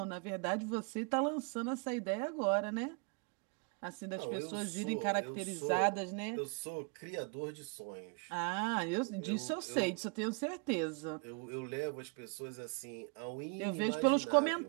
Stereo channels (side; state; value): left; quieter; 33.2 dB